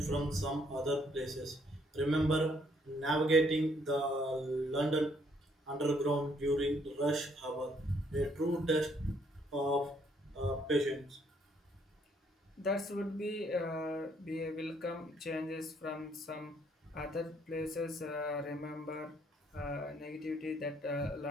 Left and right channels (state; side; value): normal; both; correlation 0.68